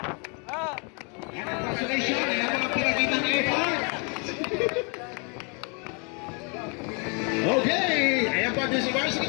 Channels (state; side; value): quieter; right; 34.5 dB